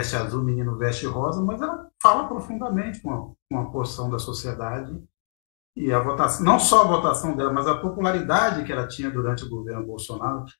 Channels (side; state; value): right; silent; digital silence